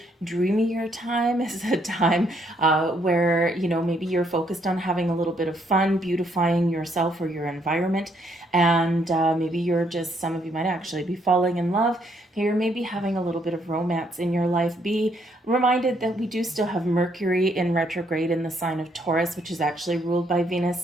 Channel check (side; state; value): both; normal; correlation 0.71